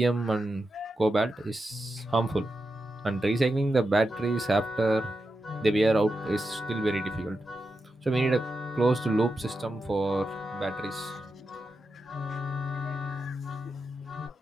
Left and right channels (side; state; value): both; normal; correlation 0.89